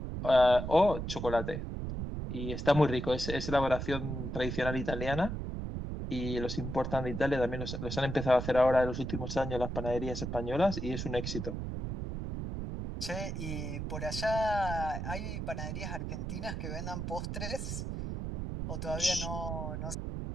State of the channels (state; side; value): noise; right; rumble, 4 dB below the sound